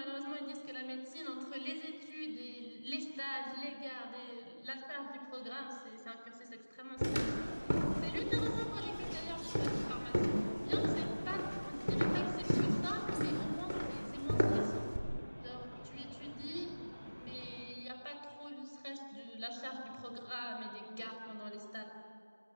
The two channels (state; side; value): inverted; both; correlation -1.00